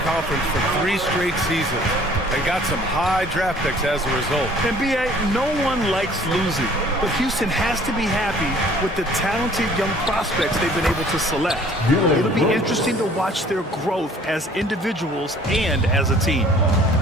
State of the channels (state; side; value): normal; both; correlation 0.54